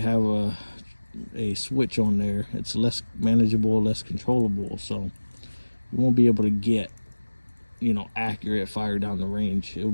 have a switch on there, it's less manageable, less controllable, so you won't be able to get, you know, accurate fire down the range. It will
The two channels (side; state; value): both; inverted; correlation -1.00